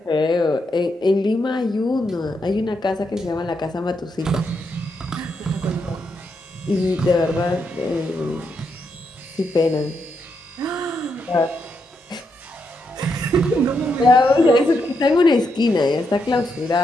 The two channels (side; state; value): both; normal; correlation 0.81